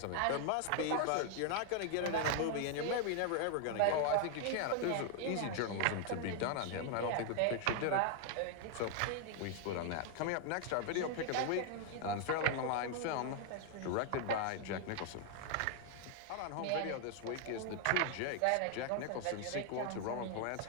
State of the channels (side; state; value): both; different; correlation 0.00